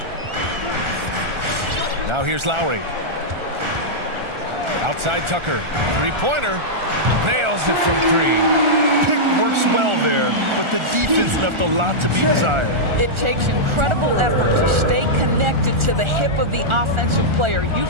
Now here's Lowry. Outside Tucker. Three-pointer. Nails it from three. Pick works well there, but the defense left a lot to be desired. It takes incredible effort to stay connected to the hip of the offensive player.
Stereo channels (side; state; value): left; late; 1.4 ms